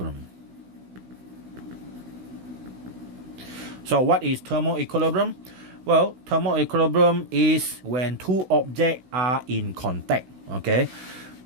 So what is thermal equilibrium? Well, thermal equilibrium is when two objects are in contact. Okay,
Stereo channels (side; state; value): left; late; 16 ms